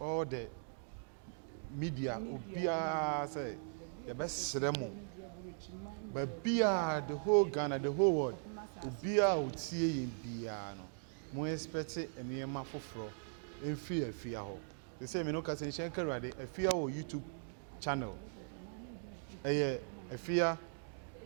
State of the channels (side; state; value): left; silent; digital silence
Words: the media obia say ye besre mo but bia the whole Ghana the whole world obia otie yin bia no mo expect enema foforo Efya ho they say me no ka say shenka rade Efya o YouTube channel Efya